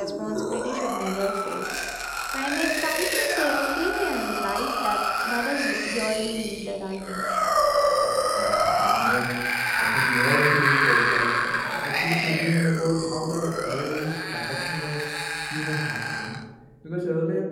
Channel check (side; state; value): both; identical; correlation 1.00